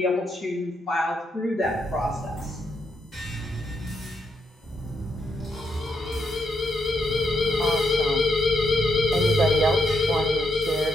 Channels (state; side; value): normal; both; correlation 0.79